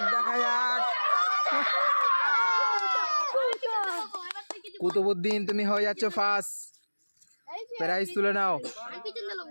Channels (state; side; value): inverted; both; correlation -1.00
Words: কুতুবউদ্দিন তুমি হয়ে যাচ্ছ ফার্স্ট। প্রাইজ তুলে নাও।